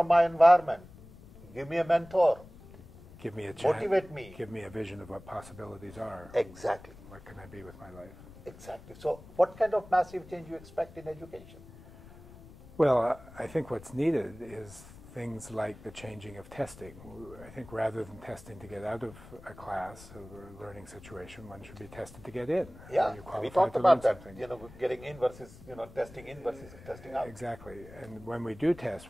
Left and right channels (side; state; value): left; noise; rumble, 19 dB below the sound